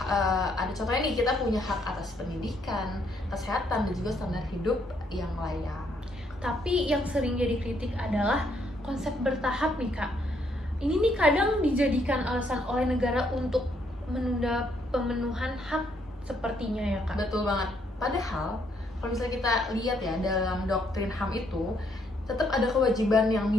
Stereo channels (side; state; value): both; normal; correlation 0.72